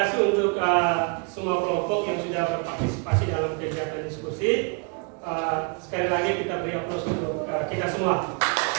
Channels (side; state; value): left; quieter; 35.5 dB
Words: untuk semua kelompok yang sudah berpartisipasi dalam kegiatan diskusi. Sekali lagi kita beri aplaus untuk kita semua.